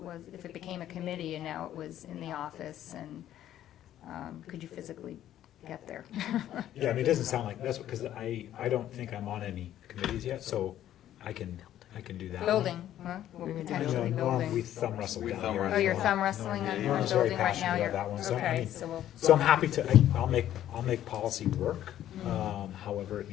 it became a committee and now it was in the office, and could you physically get there? Yeah, I mean, it doesn't sound like, that's because I don't think I'm on any committees yet, so I can do that. Building, huh? Well, You know, potentially Norm, we building. thumb wrestle We down thumb here. wrestle. Oh, you're thumb wrestling on Norm's very building right now? passionate You're about that one, so I okay, mean, so we'll. So I'm happy to, I'll make policy work, however it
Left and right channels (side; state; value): right; quieter; 12.0 dB